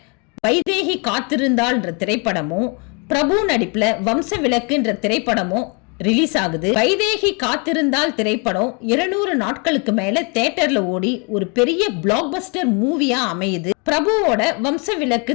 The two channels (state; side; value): quieter; right; 34.0 dB